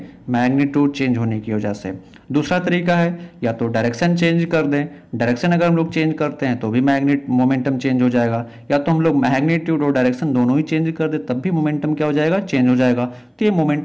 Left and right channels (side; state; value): both; identical; correlation 1.00